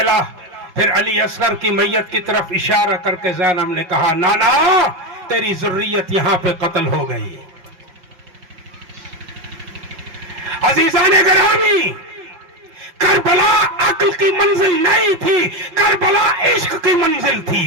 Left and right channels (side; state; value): left; late; 5.5 ms